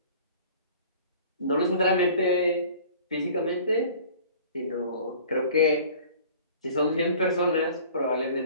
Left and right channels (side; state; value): both; inverted; correlation -0.47